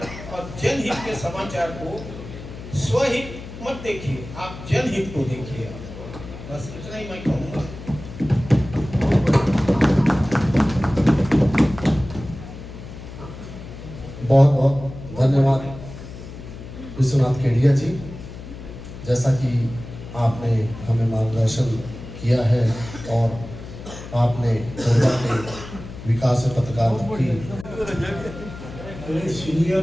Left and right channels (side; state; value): left; noise; hum, 13 dB below the sound